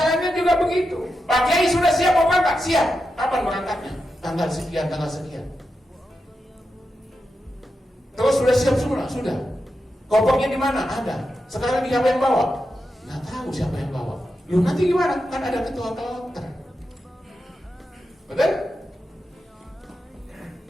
juga begitu. Pak Kiai sudah siap mau berangkat? Siap. Kapan berangkatnya? Tanggal sekian, tanggal sekian. Terus sudah siap semua? Sudah. Kopernya di mana? Ada. Sekarang siapa yang bawa? Nggak tahu siapa yang bawa. Lu nanti gimana? Kan ada ketua kloter. Betul?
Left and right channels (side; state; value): both; normal; correlation 0.88